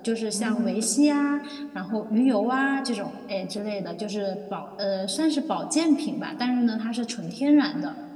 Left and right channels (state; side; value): identical; both; correlation 1.00